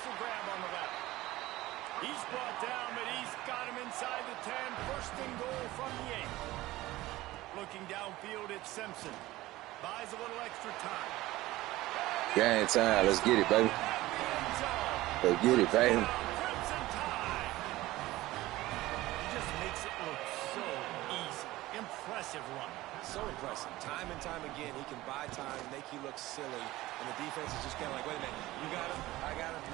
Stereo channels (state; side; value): quieter; left; 17.6 dB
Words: the grab on the left. He's brought down, but he's got him inside the 10. First and goal from the 8. Looking downfield, it's Simpson. Buys a little extra time. Game time. Let's get it, baby. Let's get it, baby. Crimson Tide. Just makes it look so easy. Impressive run. So impressive. Time and time again, he can buy time, make you look silly, and the defense is just kind of like, wait a minute, you got him? I got him?